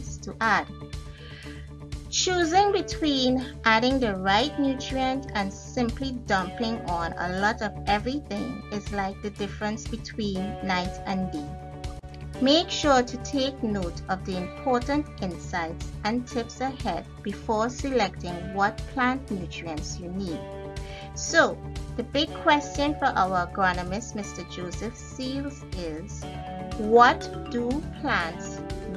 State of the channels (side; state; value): both; identical; correlation 1.00